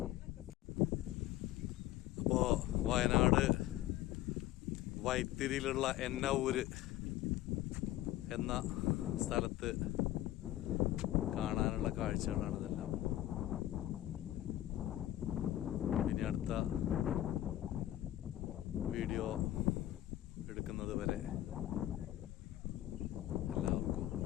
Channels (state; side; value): quieter; right; 14.4 dB